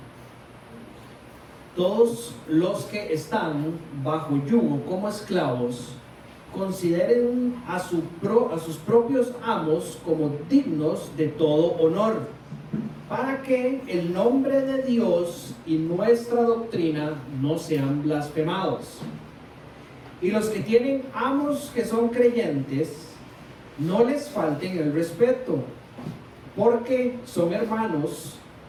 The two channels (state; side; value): identical; both; correlation 1.00